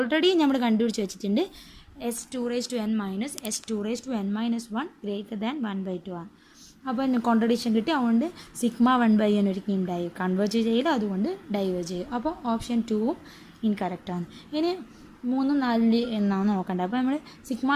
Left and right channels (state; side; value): identical; both; correlation 1.00